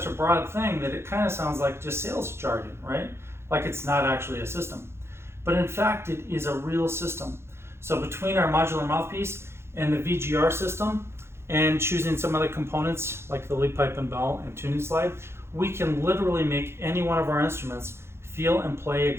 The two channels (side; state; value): left; late; 0.12 ms